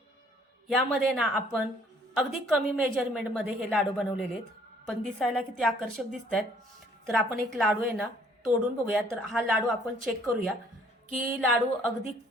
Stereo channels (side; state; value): both; normal; correlation 0.61